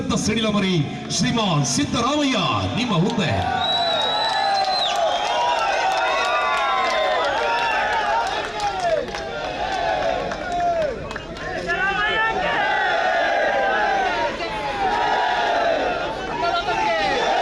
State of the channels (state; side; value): identical; both; correlation 1.00